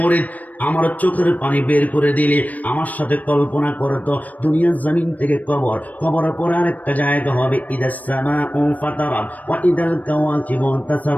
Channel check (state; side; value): late; right; 0.075 ms